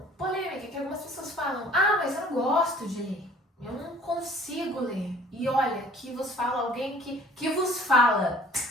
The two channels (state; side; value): normal; both; correlation 0.51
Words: polêmica, que algumas pessoas falam, mas eu não gosto de ler, eu não consigo ler. E olha, que vos fala alguém que vos fala.